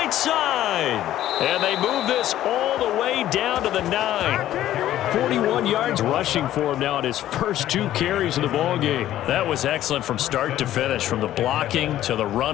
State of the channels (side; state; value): right; quieter; 12.9 dB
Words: side. And they move this all the way down to the 9. 41 yards rushing for him now at his first 2 carries of the ball game. That was excellent from start to finish, from the blocking to the